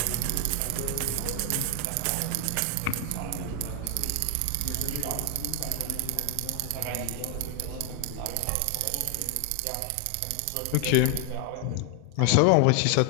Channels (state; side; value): different; both; correlation 0.00